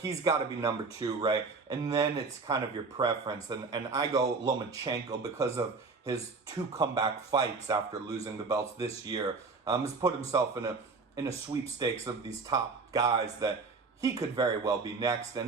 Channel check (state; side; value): quieter; left; 4.3 dB